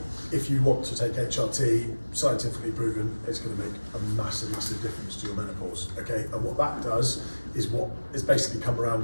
if you want to take HRT, scientifically proven, it's going to make a massive, massive difference to your menopause, okay? And what that does is what is basically come around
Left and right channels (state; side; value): inverted; both; correlation -1.00